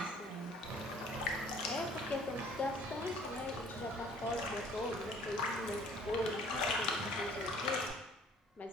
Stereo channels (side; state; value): both; normal; correlation 0.55